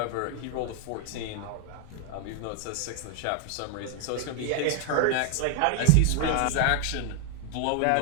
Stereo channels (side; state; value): both; different; correlation 0.00